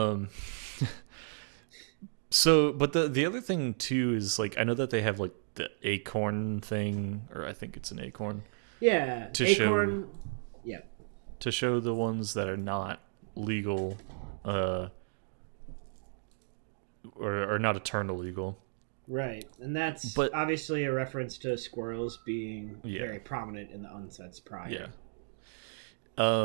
So, but the other thing too is like I know that they have like the acorn thing, or I think it's an acorn. Yeah, acorn. To show the ones that are not legal, or not eternal legal. Right, and that's obviously a reference to squirrels being very prominent in the unsets prior.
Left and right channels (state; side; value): silent; left; digital silence